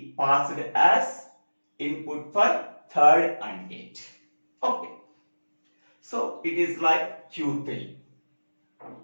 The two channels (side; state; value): both; inverted; correlation -1.00